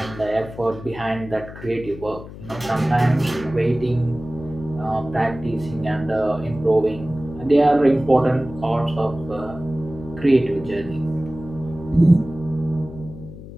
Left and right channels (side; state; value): left; noise; hum, 14 dB below the sound